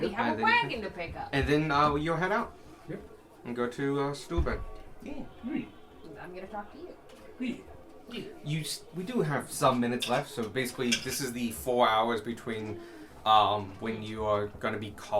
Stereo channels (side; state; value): both; identical; correlation 1.00